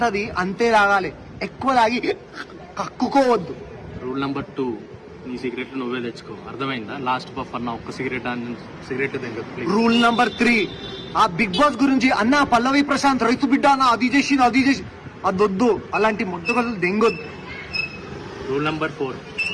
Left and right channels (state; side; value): identical; both; correlation 1.00